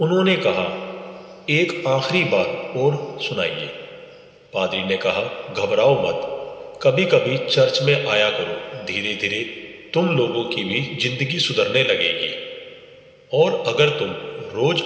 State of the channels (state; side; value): identical; both; correlation 1.00